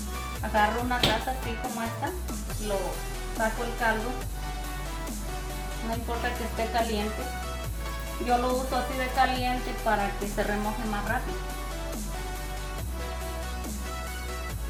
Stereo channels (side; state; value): both; identical; correlation 1.00